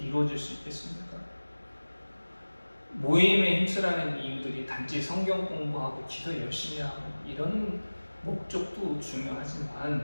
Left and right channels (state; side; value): inverted; both; correlation -1.00